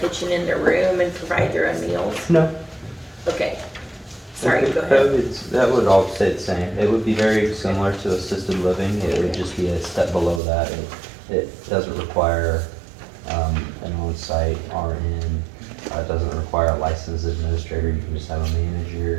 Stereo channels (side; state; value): left; drops out; at 10.4 s